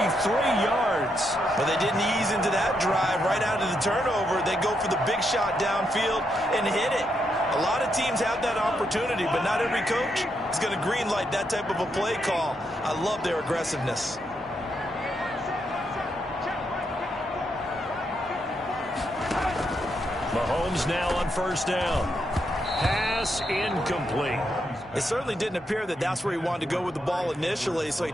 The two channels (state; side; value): normal; both; correlation 0.80